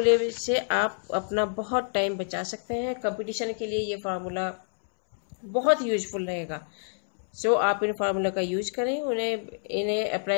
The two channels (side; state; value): right; silent; 60 dB below the other